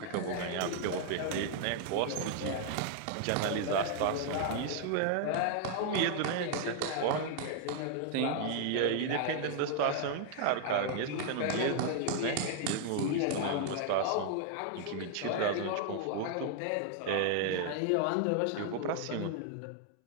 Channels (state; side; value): different; both; correlation 0.00